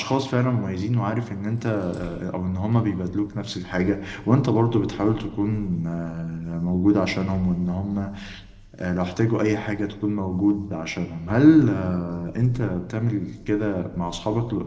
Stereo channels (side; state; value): both; identical; correlation 1.00